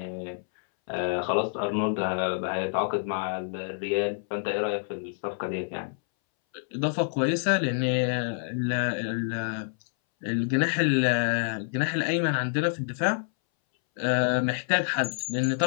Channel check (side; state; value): right; silent; 60 dB below the other